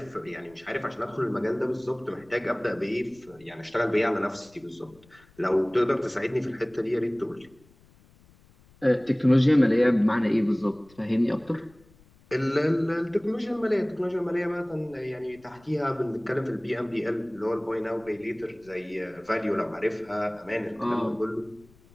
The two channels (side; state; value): left; noise; rumble, 28 dB below the sound